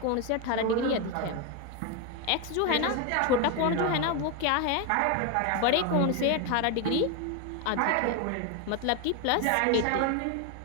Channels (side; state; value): both; different; correlation 0.02